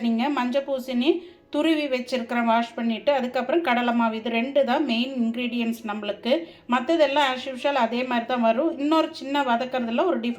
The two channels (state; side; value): identical; both; correlation 1.00